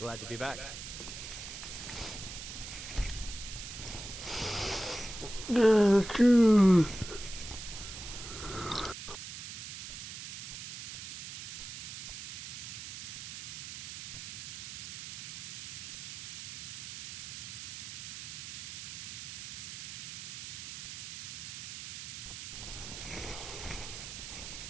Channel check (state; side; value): noise; right; hiss, 8 dB below the sound